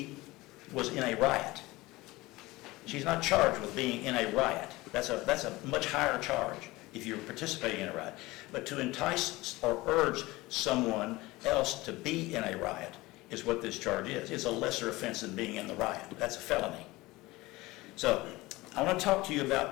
was in a riot. She's not charged with being in a riot. That's a much higher charge if you're participating in a riot. But to entice or urge someone else to be in a riot is what this charge is. It's a lesser offense than being in the riot. That's a felony. So I want to talk to you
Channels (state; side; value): quieter; right; 20.3 dB